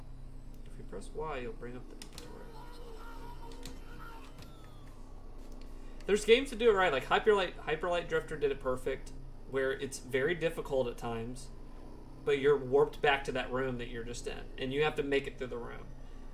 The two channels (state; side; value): identical; both; correlation 1.00